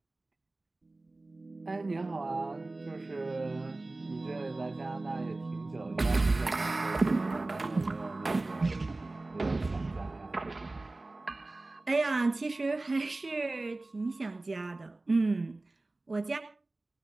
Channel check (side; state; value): left; quieter; 3.0 dB